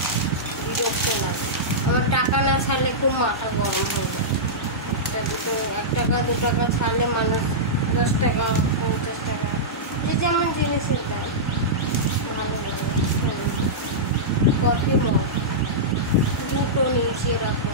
বিরক্ত লাগে। আমার টাকা না ছাড়লে খুব মাথা গরম হয়ে যায়। 1 টাকা 2 টাকা ছাড়লে মানুষ 10 টাকা 50 টাকা, যে যেমন জিনিসের দাম ভালো লাগে। কফি মগ দুটো নিয়েছি এরকম,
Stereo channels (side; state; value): both; normal; correlation -0.13